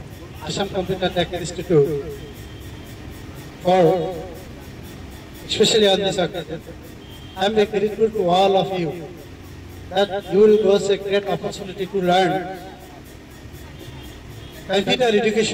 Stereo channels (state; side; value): identical; both; correlation 1.00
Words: Assam Computer Tech Institute, for especially on this occasion. I am very grateful to all of you that you will get a great opportunity to learn computer